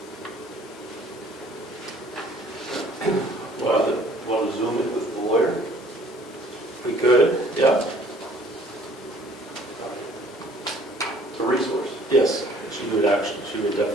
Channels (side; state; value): both; normal; correlation 0.56